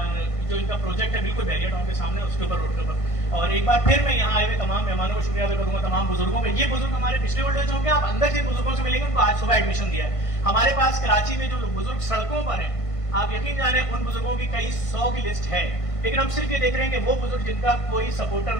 जो इनका प्रोजेक्ट है बिल्कुल बैरियर टाउन के सामने उसके ऊपर रोड के ऊपर। और एक बार फिर मैं यहाँ आए हुए तमाम मेहमानों को शुक्रिया अदा करूंगा, तमाम बुजुर्गों का। ये बुजुर्ग हमारे पिछले ओल्ड एज होम के, आप अंदर जिन बुजुर्गों से मिलेंगे उनको आज सुबह एडमिशन दिया है। हमारे पास कराची में जो बुजुर्ग सड़कों पर हैं, आप यकीन जाने उन बुजुर्गों की कई 100 की लिस्ट है। लेकिन हम सिर्फ ये देख रहे हैं कि वो बुजुर्ग जिनका कोई सपोर्टर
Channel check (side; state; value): right; late; 1.5 ms